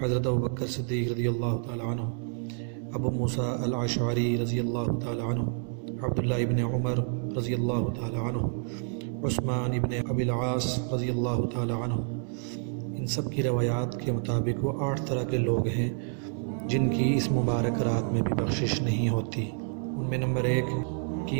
حضرت ابوبکر صدیق رضی اللہ تعالی عنہ، ابو موسیٰ الاشعری رضی اللہ تعالی عنہ، عبداللہ ابن عمر رضی اللہ تعالی عنہ، عثمان ابن ابی العاص رضی اللہ تعالی عنہ، ان سب کی روایات کے مطابق وہ 8 طرح کے لوگ ہیں جن کی اس مبارک رات میں بھی بخشش نہیں ہوتی۔ ان میں نمبر 1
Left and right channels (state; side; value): silent; left; 59 dB below the other